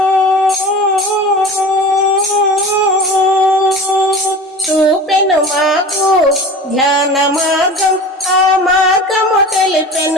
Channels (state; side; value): normal; both; correlation 0.36